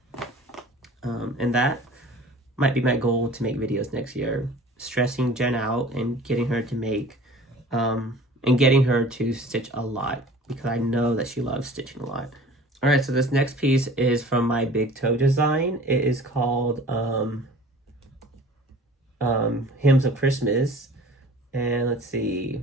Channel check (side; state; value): both; normal; correlation 0.45